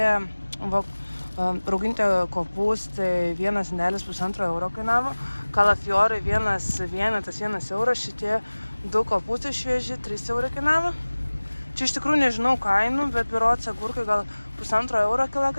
rauginti kopūstai vienas indelis 1,5 euro kainavo, kalafiorai vienas vienetas 1 euras, šitie 2 kopūstai švieži 3 eurai kainavo. Čia iš tikrųjų nežinau kainų, bet berods agurkai gal 1,5 euro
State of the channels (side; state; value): both; inverted; correlation -1.00